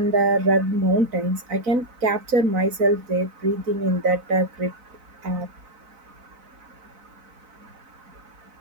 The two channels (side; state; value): left; late; 4.0 ms